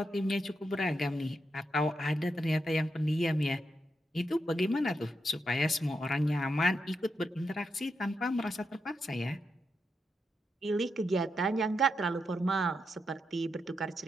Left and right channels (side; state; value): both; normal; correlation 0.84